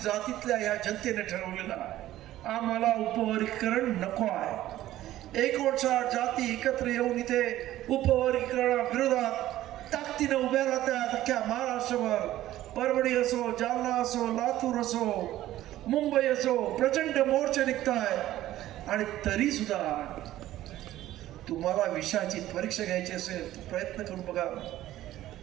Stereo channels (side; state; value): left; quieter; 14.3 dB